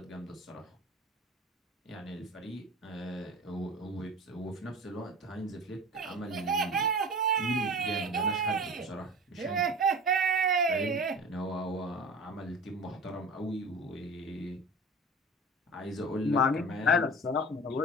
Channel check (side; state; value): both; normal; correlation 0.35